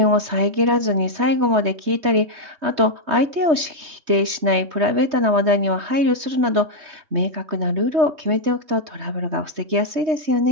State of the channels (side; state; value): left; late; 3.2 ms